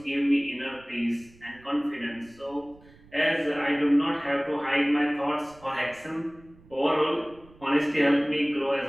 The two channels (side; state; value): right; noise; rumble, 25 dB below the sound